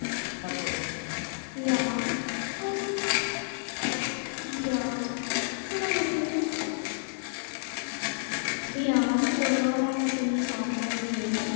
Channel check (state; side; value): silent; right; digital silence